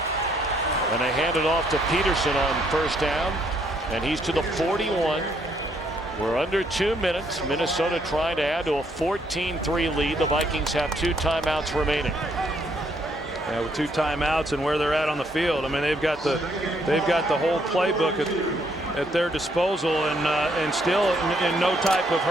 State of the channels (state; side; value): normal; both; correlation 0.70